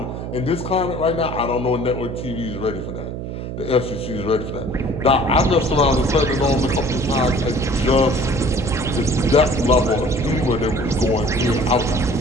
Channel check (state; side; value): noise; right; hum, 7 dB below the sound